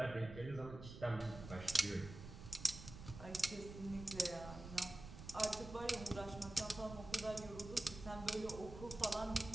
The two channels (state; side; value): noise; right; rumble, 11 dB below the sound